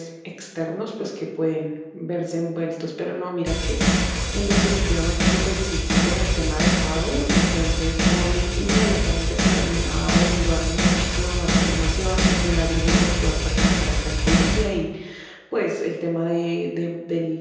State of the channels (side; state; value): both; identical; correlation 1.00